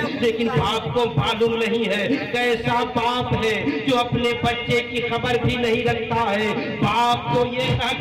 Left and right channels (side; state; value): both; identical; correlation 1.00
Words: لیکن باپ کو معلوم نہیں ہے، کیسا باپ ہے جو اپنے بچے کی خبر بھی نہیں رکھتا ہے۔ باپ کو یہ کہا